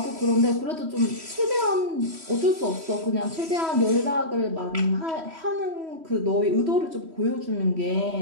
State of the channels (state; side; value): late; left; 3.1 ms